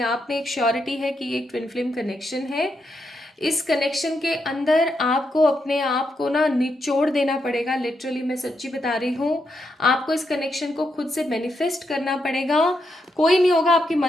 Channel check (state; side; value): normal; both; correlation 0.82